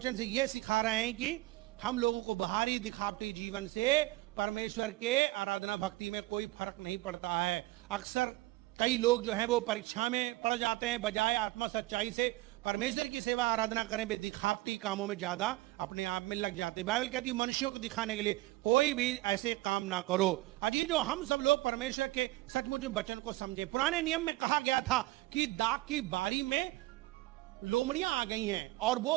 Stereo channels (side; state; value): left; quieter; 19.4 dB